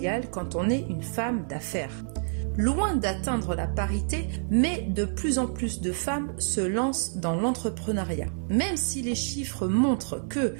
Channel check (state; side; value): silent; left; 59 dB below the other